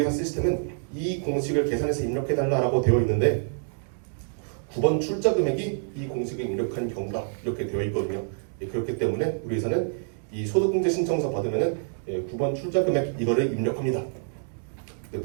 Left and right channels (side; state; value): left; silent; digital silence